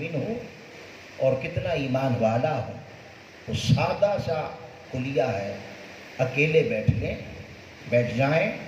ہوں اور کتنا ایمان والا ہوں، تو سادہ سا کلیہ ہے، اکیلے بیٹھ جائیں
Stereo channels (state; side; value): identical; both; correlation 1.00